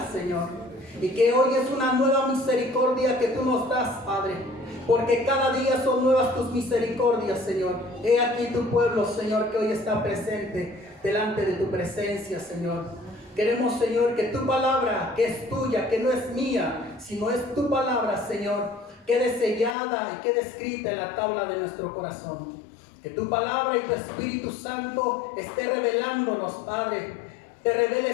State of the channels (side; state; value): right; drops out; at 19.8 s